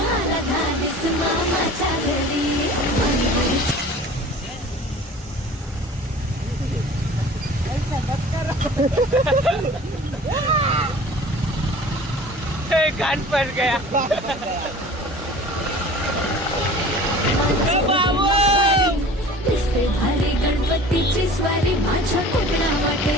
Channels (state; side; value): normal; both; correlation 0.43